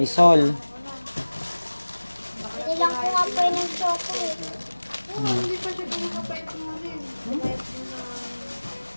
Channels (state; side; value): inverted; both; correlation -1.00